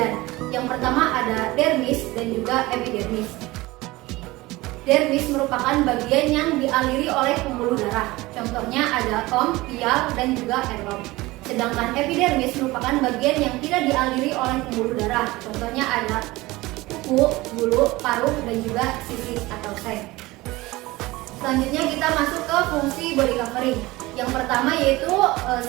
Yang pertama ada dermis dan juga epidermis. Dermis merupakan bagian yang dialiri oleh pembuluh darah. Contohnya ada tom, pial, dan juga elom. Sedangkan epidermis merupakan bagian yang tidak dialiri oleh pembuluh darah. Contohnya ada kuku, bulu, paruh, dan juga sisis atau seng. Selanjutnya kita masuk ke fungsi body covering. Yang pertama yaitu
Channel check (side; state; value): left; quieter; 20.2 dB